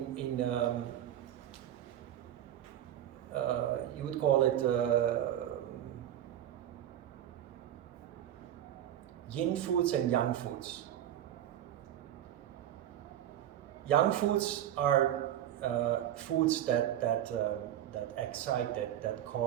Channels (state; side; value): quieter; left; 11.4 dB